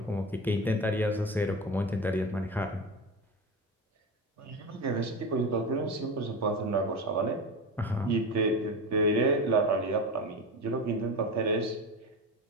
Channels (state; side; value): normal; both; correlation 0.24